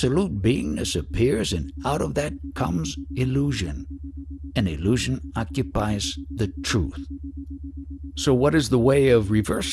beingness appears, and out of that comes illusion. And illusion occupies the truth. So what is the way of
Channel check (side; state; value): both; identical; correlation 1.00